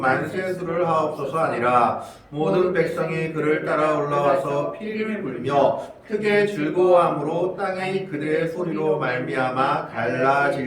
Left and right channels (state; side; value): identical; both; correlation 1.00